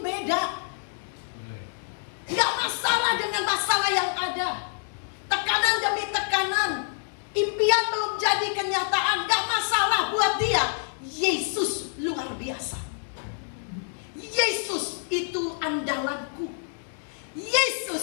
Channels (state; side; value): silent; right; 60 dB below the other